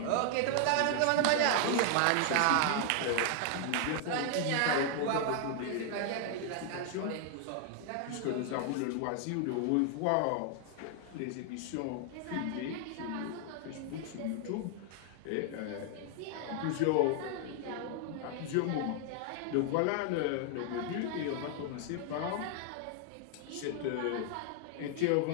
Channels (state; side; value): different; both; correlation 0.00